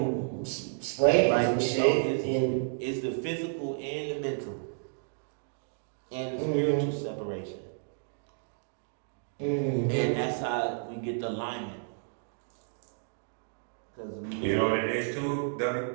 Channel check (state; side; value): silent; left; digital silence